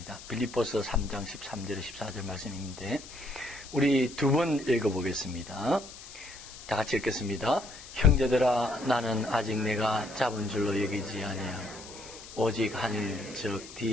빌립보서 3장 13절 14절 말씀인데 우리 두 번 읽어보겠습니다. 다 같이 읽겠습니다. 형제들아, 나는 아직 내가 잡은 줄로 여기지 아니하고 오직 하늘 즉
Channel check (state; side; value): noise; left; hiss, 16 dB below the sound